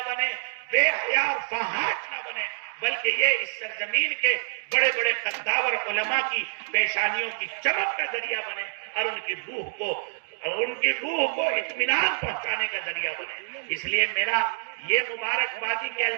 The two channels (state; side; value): silent; left; digital silence